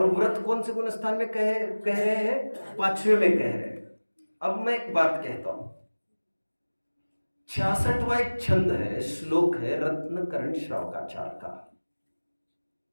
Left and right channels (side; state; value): both; inverted; correlation -1.00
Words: व्रत कौन से गुणस्थान में कह रहे हैं? 5वें में कह रहे हैं। अब मैं एक बात कहता हूं, 66वां एक छंद है, श्लोक है रत्नकरण श्रावकाचार का,